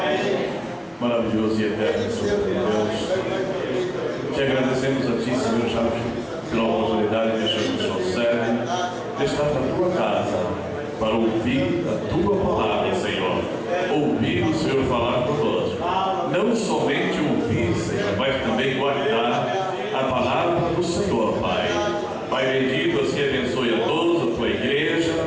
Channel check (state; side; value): identical; both; correlation 1.00